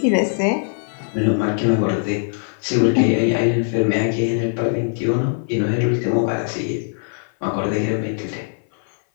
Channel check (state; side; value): silent; right; 57 dB below the other